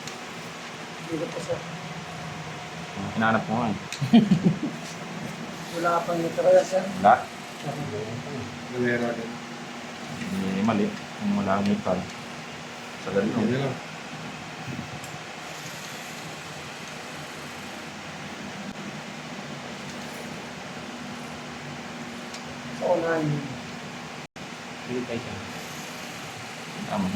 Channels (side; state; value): both; identical; correlation 1.00